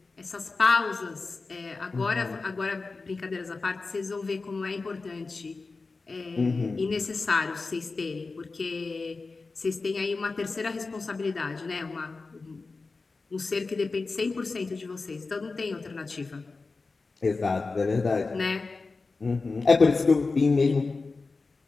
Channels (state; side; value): quieter; right; 3.9 dB